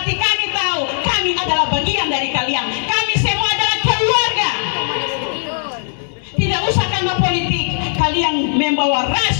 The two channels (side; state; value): right; silent; digital silence